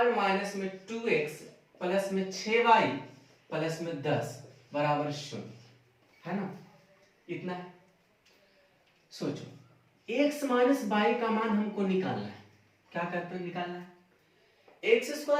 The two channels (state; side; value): identical; both; correlation 1.00